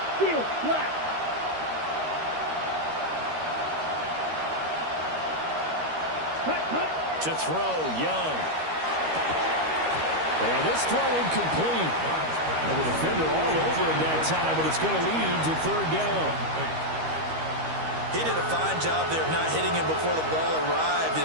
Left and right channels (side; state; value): left; late; 13 ms